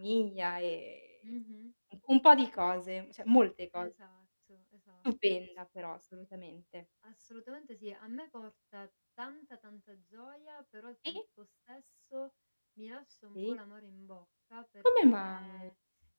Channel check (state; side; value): inverted; both; correlation -1.00